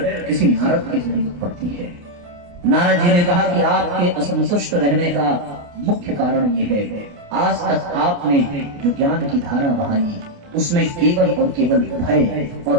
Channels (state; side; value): late; left; 28 ms